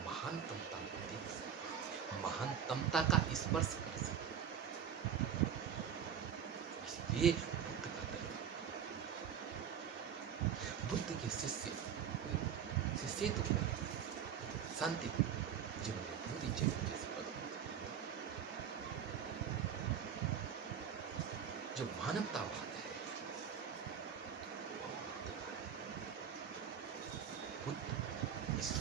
महानतमता को देख सकें, महानतमता का स्पर्श कर सकें। इसलिए बुद्ध का दर्शन, बुद्ध के शिष्य तो शांति जिन्होंने पूरी जगह जैसे पद, जो मानवतावाद है वो बुद्ध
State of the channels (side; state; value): left; quieter; 8.2 dB